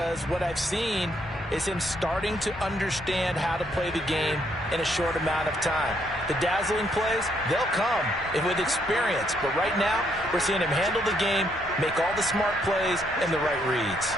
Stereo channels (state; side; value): normal; both; correlation 0.72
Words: what I've seen is him starting to understand how to play the game in a short amount of time. The dazzling plays, they'll come with experience. But right now, we're seeing him handle the game, make all the smart plays, and the right reads.